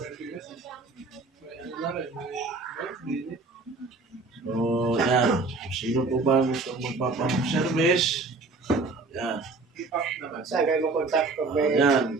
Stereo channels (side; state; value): left; quieter; 3.7 dB